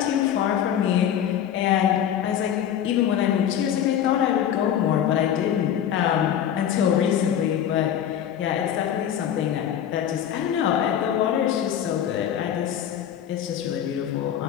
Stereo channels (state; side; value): quieter; right; 9.8 dB